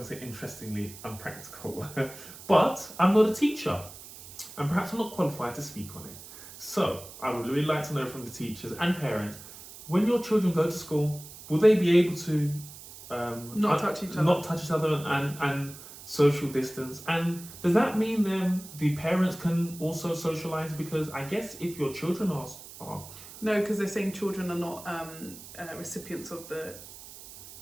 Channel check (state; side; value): noise; right; hiss, 16 dB below the sound